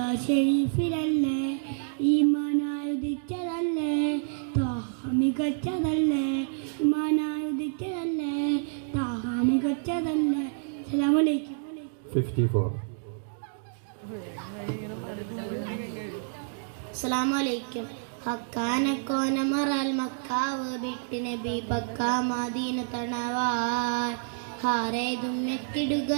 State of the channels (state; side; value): silent; left; digital silence